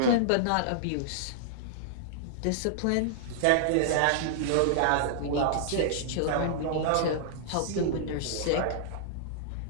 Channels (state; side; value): different; both; correlation -0.01